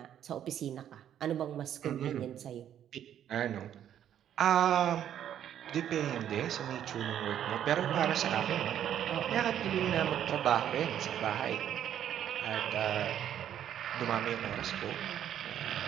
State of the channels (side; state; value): left; quieter; 10.3 dB